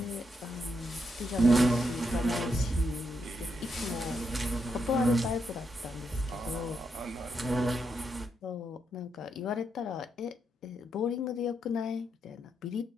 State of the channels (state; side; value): normal; both; correlation 0.81